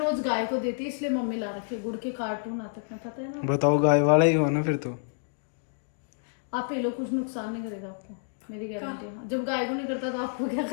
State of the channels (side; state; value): right; silent; digital silence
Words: गाय को देती है इसलिए मम्मी ला रखी है। गुड़ के कार्टून आते हैं, पता है ना। बताओ, गाय वाला ही हो ना फिर तो। आप पी लो, कुछ नुकसान नहीं करेगा आपको, मेरी गारंटी है। जब गाय को नहीं करता तो आपको क्या